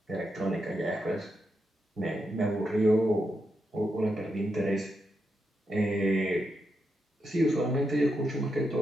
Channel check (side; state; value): both; normal; correlation 0.84